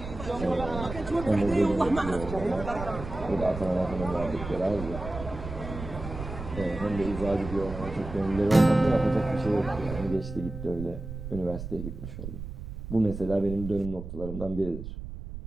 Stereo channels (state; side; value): noise; right; rumble, 9 dB below the sound